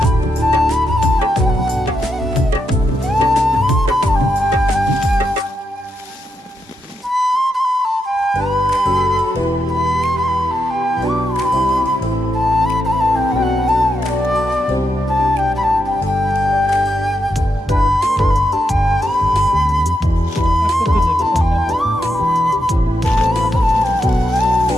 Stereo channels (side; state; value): both; normal; correlation 0.83